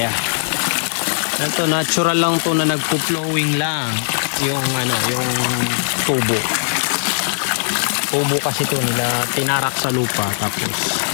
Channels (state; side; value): silent; right; 64 dB below the other